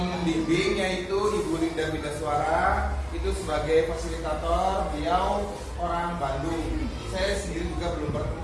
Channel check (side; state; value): both; identical; correlation 1.00